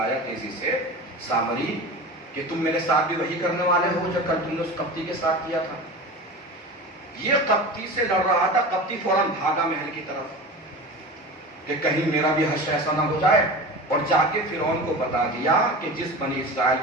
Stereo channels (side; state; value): both; normal; correlation 0.31